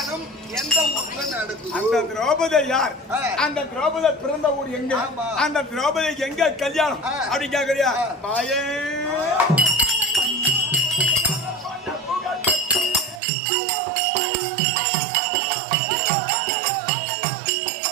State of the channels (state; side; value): drops out; left; at 13.2 s